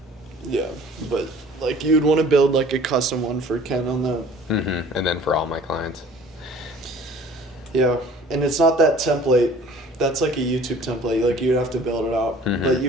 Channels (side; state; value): both; normal; correlation 0.50